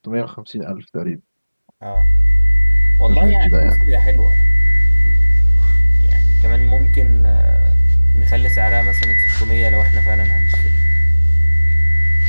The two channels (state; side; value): inverted; both; correlation -1.00